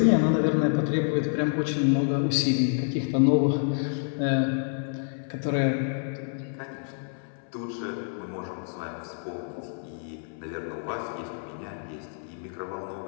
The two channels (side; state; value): right; silent; 57 dB below the other